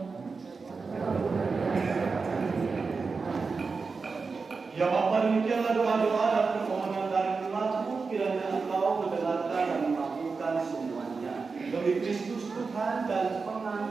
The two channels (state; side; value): quieter; left; 4.6 dB